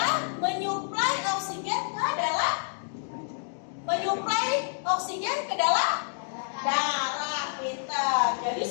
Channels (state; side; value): silent; right; digital silence